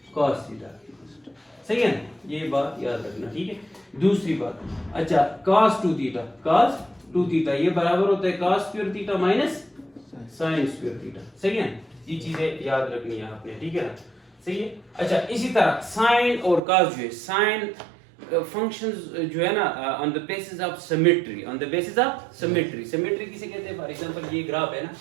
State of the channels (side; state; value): left; drops out; at 16.6 s